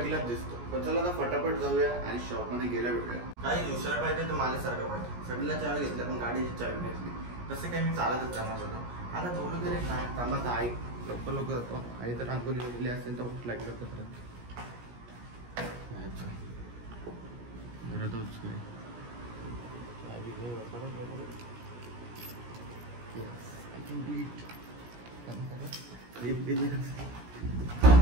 दिसतो पण चला आता फटाफट जाऊया आणि शॉपमध्ये गेल्या भेटूया काही दुसऱ्या पाहिजे तर मला सारखं पाहिजे सगळ्याला चावी घेतल्या पण गाडीची चावी घेतली तसं काही मी चालतच जाणार होतो आता थोडं तरी काय थांबा आई लवकर जातो आई तर रांगोली गेली असेल तर भूक लागली लवकर घरातच चावी लिप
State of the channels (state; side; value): late; left; 17 ms